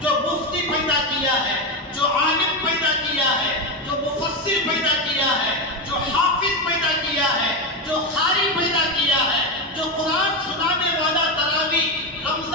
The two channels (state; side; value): normal; both; correlation 0.13